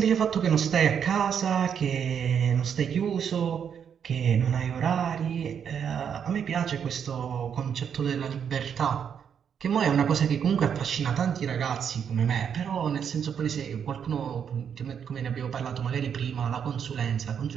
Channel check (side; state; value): left; quieter; 7.8 dB